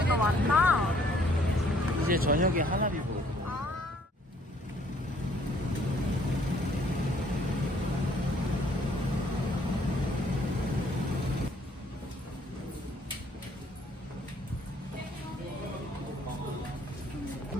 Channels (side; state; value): both; normal; correlation 0.63